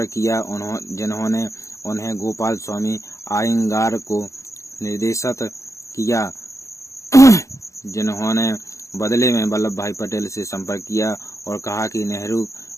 किया, जिन्होंने उन्हें गोपाल स्वामी आयंगार को निर्देशित किया, जिन्होंने बदले में वल्लभ भाई पटेल से संपर्क किया और कहा कि नेहरू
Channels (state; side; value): late; right; 0.15 ms